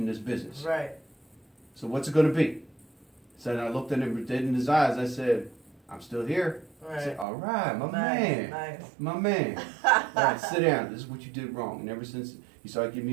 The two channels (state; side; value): drops out; left; at 7.2 s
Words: this business. Right. So what's it going to be? So then I looked at him dead in his eyes. I said, I'm still here. Right. I said, all right, my man. Nice. My man. All right, sit down. This is what you did wrong. And ever since... He started giving